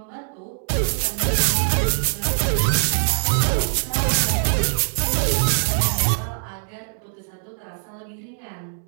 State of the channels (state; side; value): silent; left; 64 dB below the other